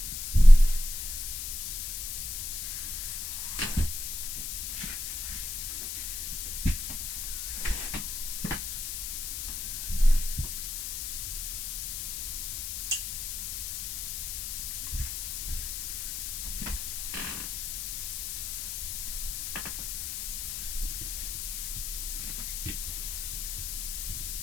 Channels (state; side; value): noise; left; hiss, 4 dB below the sound